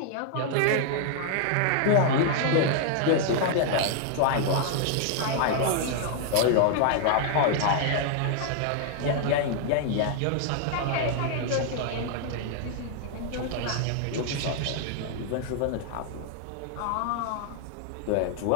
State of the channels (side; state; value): both; different; correlation 0.00